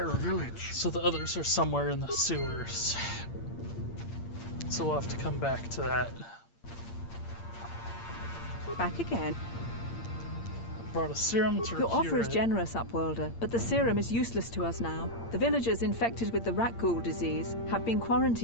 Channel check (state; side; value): late; right; 8.7 ms